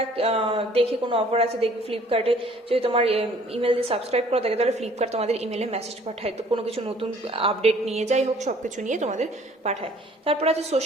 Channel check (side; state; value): both; normal; correlation 0.56